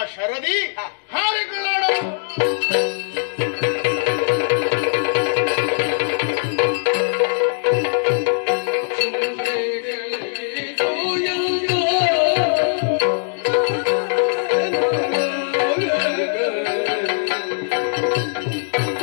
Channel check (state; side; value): silent; right; 65 dB below the other